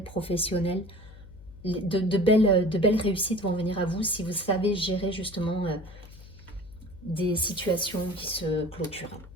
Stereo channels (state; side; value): noise; left; hum, 18 dB below the sound